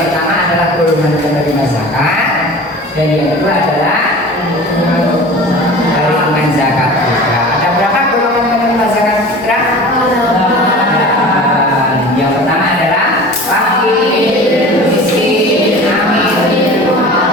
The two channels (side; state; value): both; normal; correlation 0.39